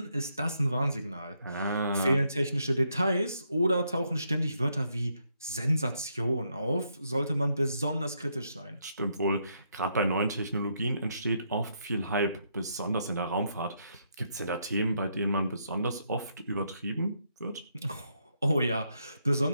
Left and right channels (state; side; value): inverted; both; correlation -0.76